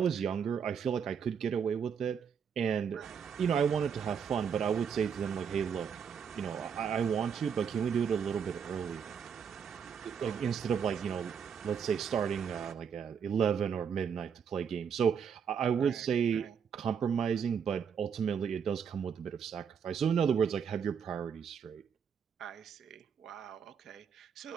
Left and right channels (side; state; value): left; quieter; 7.1 dB